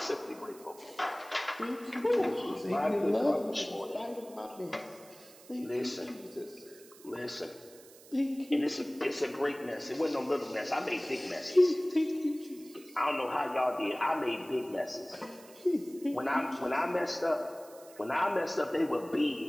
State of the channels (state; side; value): noise; right; hiss, 22 dB below the sound